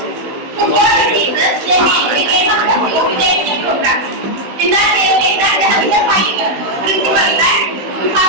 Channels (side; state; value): left; late; 16 ms